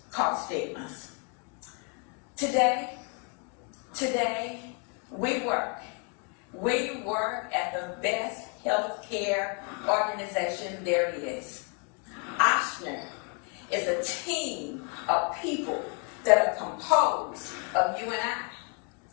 called stigmas. Today, we work at the best healthcare organization there is. Oschner is a team of people that are composed of you and I.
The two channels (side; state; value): right; quieter; 37.4 dB